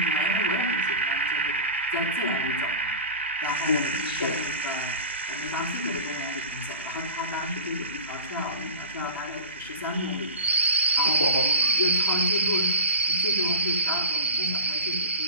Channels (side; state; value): both; inverted; correlation -0.31